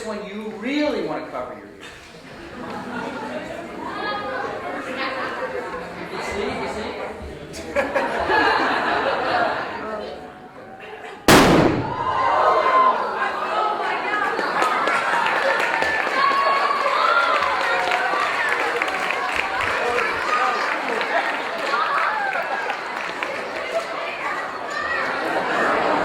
one you really want to cover your ears. You see?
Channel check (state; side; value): identical; both; correlation 1.00